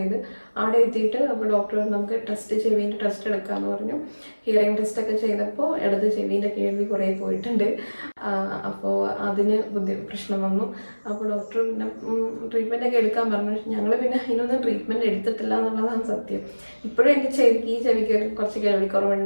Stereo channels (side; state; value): both; inverted; correlation -1.00